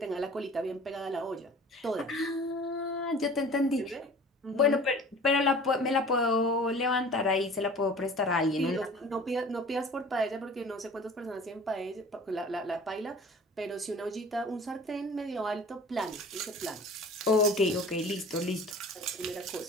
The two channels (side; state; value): both; normal; correlation 0.44